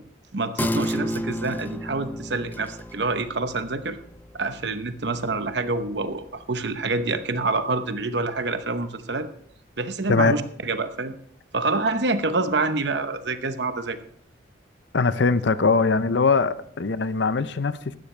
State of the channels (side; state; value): both; normal; correlation 0.06